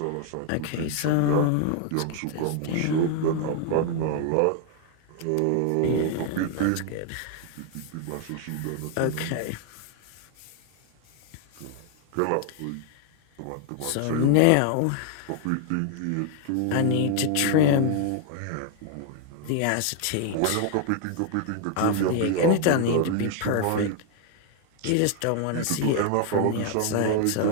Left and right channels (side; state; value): both; different; correlation 0.00